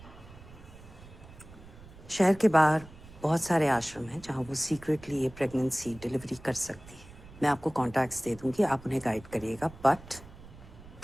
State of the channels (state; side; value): noise; right; rumble, 19 dB below the sound